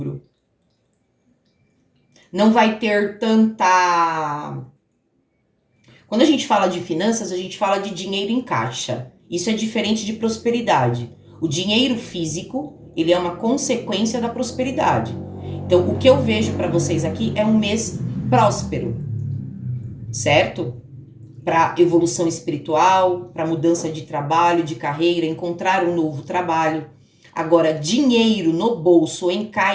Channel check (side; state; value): both; identical; correlation 1.00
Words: Não vai ter tanta... Quando a gente fala de finanças, a gente fala de dinheiro em caixa. Isso é diferente de prosperidade. O dinheiro físico, ele é uma consequência da prosperidade. Então, o que eu vejo para vocês aqui é um mês próspero, certo? Para evolução espiritual, para mudança de trabalho, de carreira, encontrar um novo trabalho. Agora, dinheiro no bolso, em